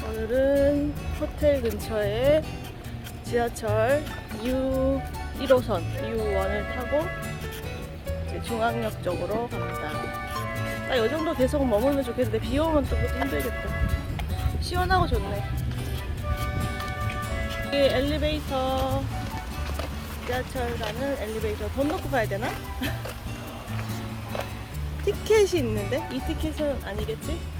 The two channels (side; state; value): both; identical; correlation 1.00